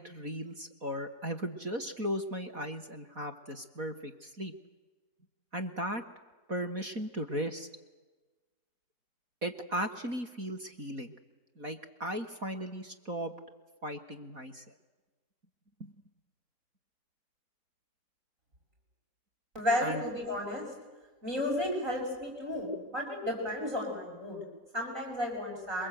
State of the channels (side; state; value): left; late; 4.1 ms